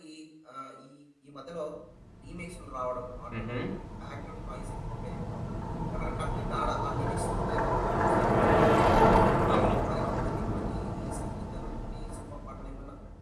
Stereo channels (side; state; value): both; identical; correlation 1.00